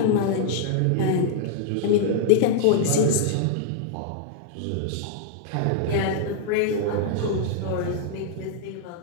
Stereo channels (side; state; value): both; different; correlation -0.01